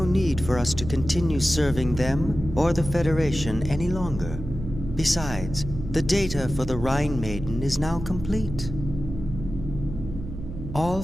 need for us to continue serving them or the Federation any longer. Besides, the data for the Rhine Maiden is now complete. All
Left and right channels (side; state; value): right; noise; hum, 9 dB below the sound